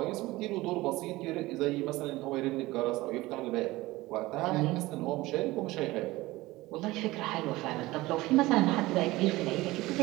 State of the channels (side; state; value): left; quieter; 19.2 dB